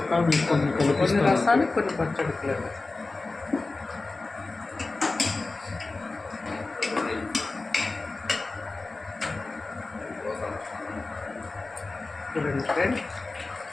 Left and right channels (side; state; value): right; quieter; 3.5 dB